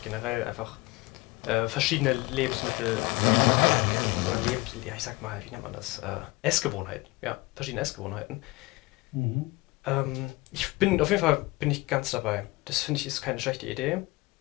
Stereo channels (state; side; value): quieter; right; 22.5 dB